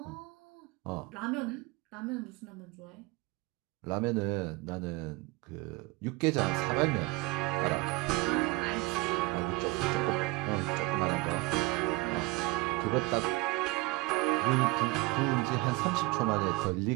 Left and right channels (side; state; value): left; quieter; 23.4 dB